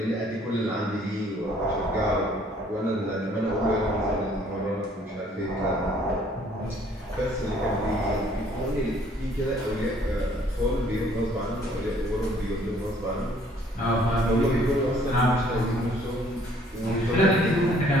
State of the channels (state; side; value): normal; both; correlation 0.60